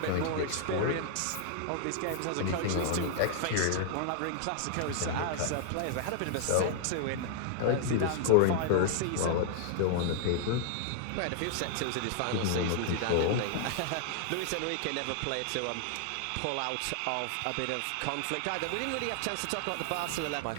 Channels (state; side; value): different; both; correlation 0.00